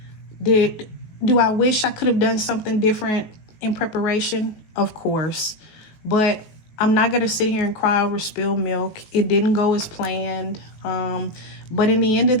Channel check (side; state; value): right; late; 19 ms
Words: Do I wish I could have done something different in preparation? Of course. But I'm not going to sit here and cry over spilled milk. It didn't go as planned. But at the end of